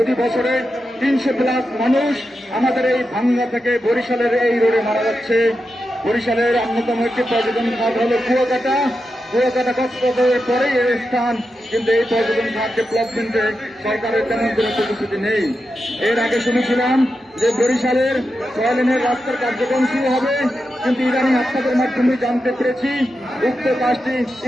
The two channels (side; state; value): both; normal; correlation 0.89